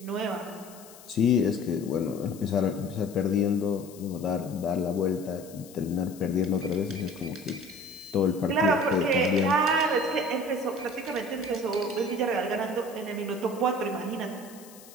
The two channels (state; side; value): noise; left; hiss, 20 dB below the sound